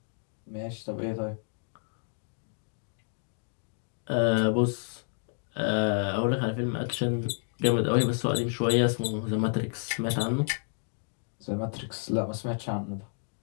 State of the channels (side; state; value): right; silent; 58 dB below the other